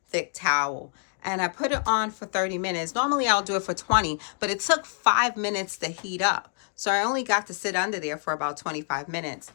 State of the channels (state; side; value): silent; right; 59 dB below the other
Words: thick towel. And I put it on for 30 minutes. Normally I'll do it for 20, but it took 5 minutes to heat up. So I only got to sit under there for about 25 minutes.